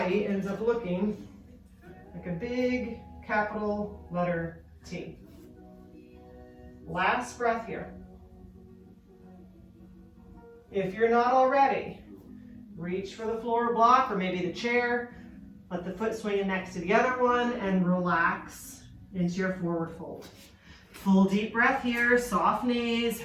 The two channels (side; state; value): both; identical; correlation 1.00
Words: ends up looking like a big capital letter T. Last breath here. If you're not already, reach for the floor block or maybe the chair. Let the foot swing in next to the other one and relax into your forward fold. Full deep breath here, soft knees,